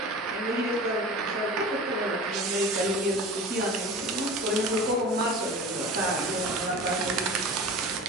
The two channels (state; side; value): normal; both; correlation 0.36